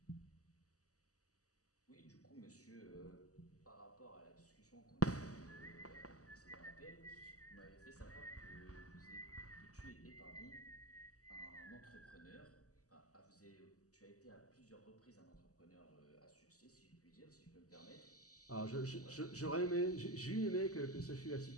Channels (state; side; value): late; right; 0.66 ms